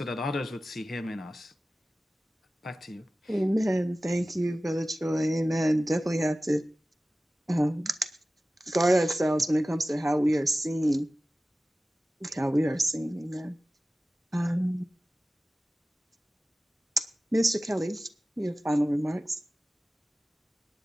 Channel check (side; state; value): both; normal; correlation 0.96